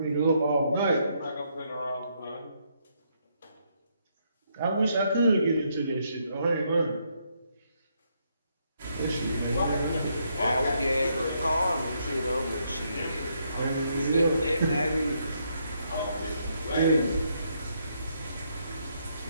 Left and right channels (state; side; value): inverted; both; correlation -0.75